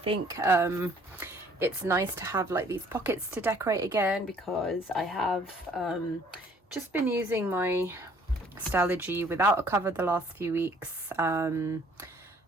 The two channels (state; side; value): normal; both; correlation 0.58